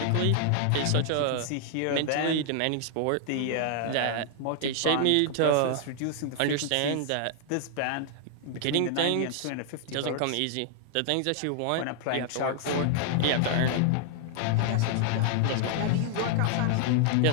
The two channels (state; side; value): different; both; correlation 0.00